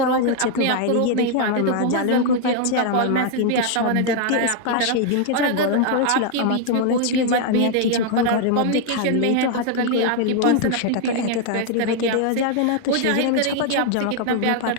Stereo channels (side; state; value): both; different; correlation 0.00